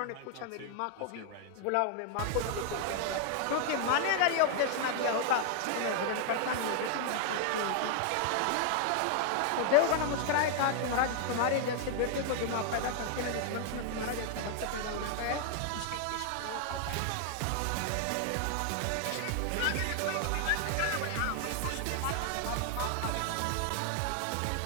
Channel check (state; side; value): different; both; correlation 0.00